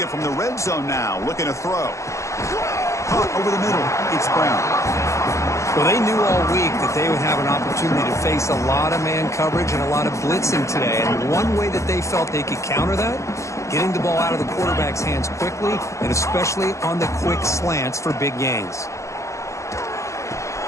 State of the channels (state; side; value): late; right; 0.15 ms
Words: from the red zone now. Looking to throw. Over the middle. It's Brown. Well, they knew all week that they would have an opportunity to face a lot of man coverage and a lot of blitzing today. And one way that they felt they could counter that, getting the ball out of the quarterback's hands quickly, and especially on the quick slants for big gains.